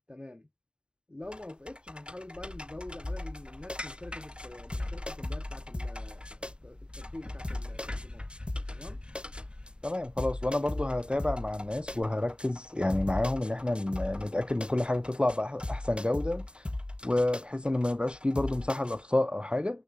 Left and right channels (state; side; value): late; left; 0.051 ms